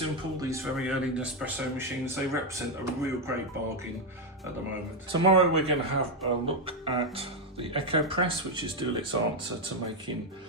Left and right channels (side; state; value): both; normal; correlation 0.04